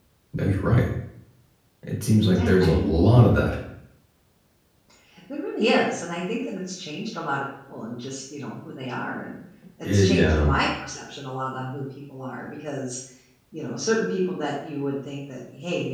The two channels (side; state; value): both; identical; correlation 1.00